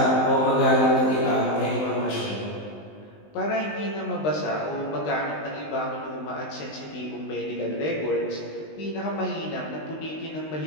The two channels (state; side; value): late; right; 19 ms